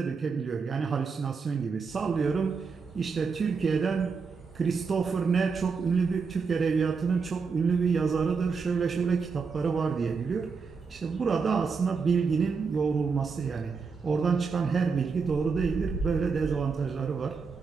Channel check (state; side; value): quieter; left; 5.2 dB